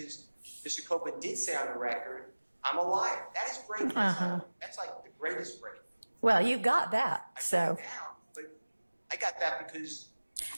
Mr. Copeland did say on the record, I'm a liar. That is Brady. That's like the greatest Brady. Well, you got that, so. But I got that because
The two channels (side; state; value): both; inverted; correlation -1.00